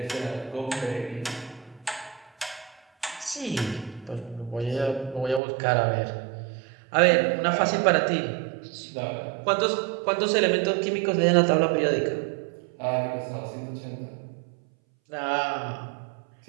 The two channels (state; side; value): drops out; left; at 5.4 s